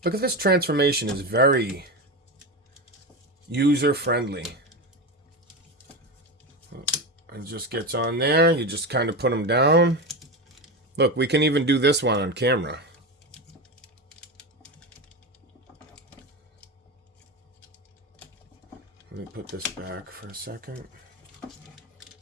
Look at this transformation. Is very user-friendly. It just gets on there. You just kind of put them down. Look, we can even do this one on camera. Let me put this back for a second.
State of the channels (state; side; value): normal; both; correlation 0.19